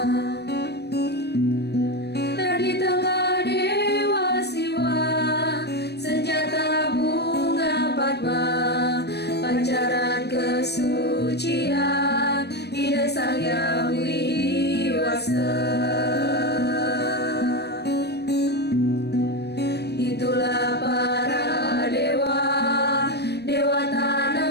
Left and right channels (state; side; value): late; right; 0.48 ms